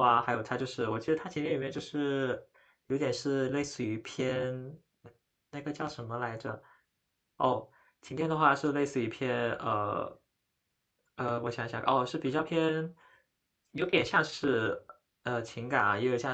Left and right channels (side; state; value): both; identical; correlation 1.00